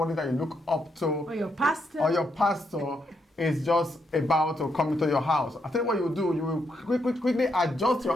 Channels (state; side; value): normal; both; correlation 0.79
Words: that you look up to, Or your pastor is just about to come into your house. I tell you what you will do. You will quickly adjust